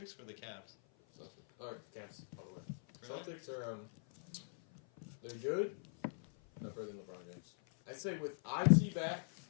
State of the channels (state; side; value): silent; right; 50 dB below the other